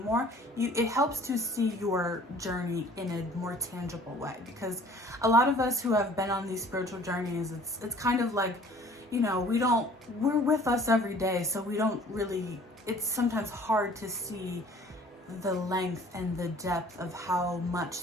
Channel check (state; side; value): normal; both; correlation 0.51